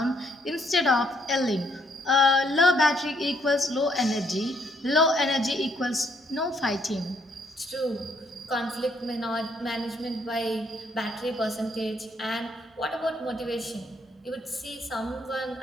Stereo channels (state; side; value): normal; both; correlation 0.70